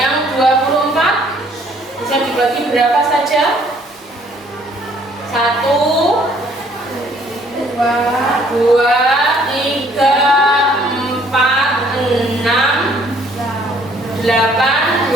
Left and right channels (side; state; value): both; normal; correlation 0.61